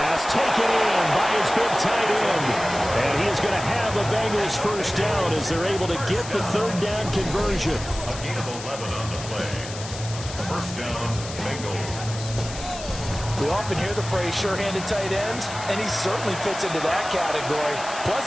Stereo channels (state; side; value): noise; left; hiss, 11 dB below the sound